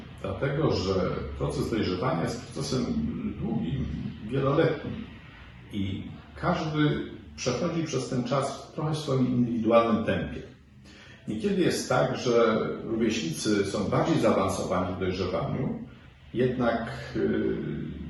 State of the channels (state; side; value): identical; both; correlation 1.00